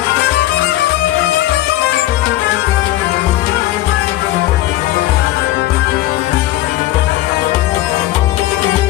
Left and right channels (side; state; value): right; quieter; 15.3 dB